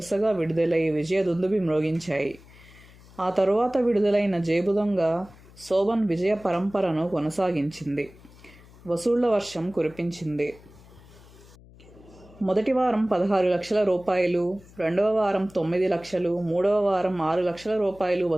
విడుదలై విజయదుందుభి మ్రోగించాయి. ఆ తరువాత విడుదలైన జేబుదొంగ శోభన్ విజయ పరంపరను కొనసాగించింది. వసూళ్ల వర్షం కురిపించింది. మొదటి వారం 16 లక్షల రూపాయలు, రెండవ వారం 9 లక్షలు, మూడవ వారం 6 లక్షల రూపాయలు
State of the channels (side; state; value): left; noise; hum, 23 dB below the sound